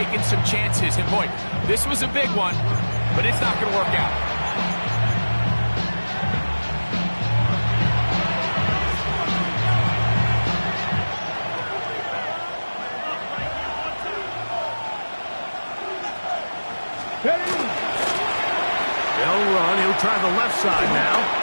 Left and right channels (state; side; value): inverted; both; correlation -1.00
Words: some chances. And boy, this was a big one, but it's not going to work out. They'll run. He'll try the left side now.